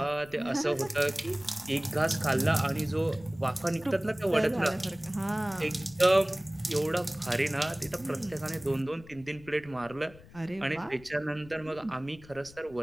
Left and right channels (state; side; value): noise; left; rumble, 21 dB below the sound